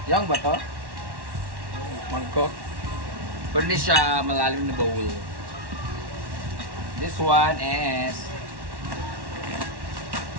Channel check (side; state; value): left; late; 1.1 ms